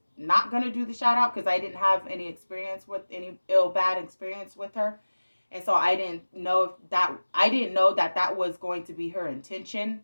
not going to do the shout out because I didn't have any experience with any bad experience with her. And so I didn't know that was going to be her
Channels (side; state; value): both; inverted; correlation -1.00